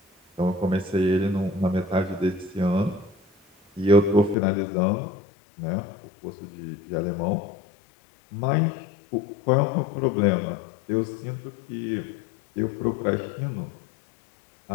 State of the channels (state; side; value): drops out; right; at 4.4 s